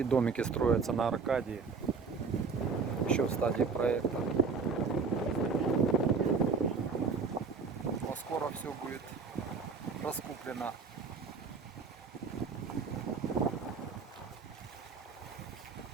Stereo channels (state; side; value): quieter; left; 5.0 dB